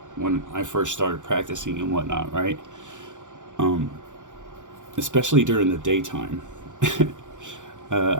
when I first started practicing and whatnot, right? Especially during the daytime.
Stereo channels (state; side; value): late; left; 0.86 ms